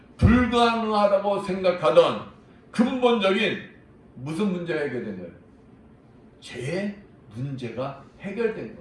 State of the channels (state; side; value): identical; both; correlation 1.00